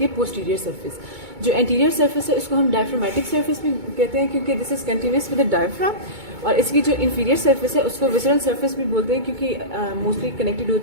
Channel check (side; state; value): left; late; 2.2 ms